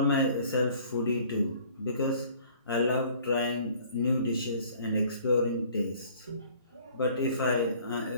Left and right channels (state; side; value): inverted; both; correlation -0.54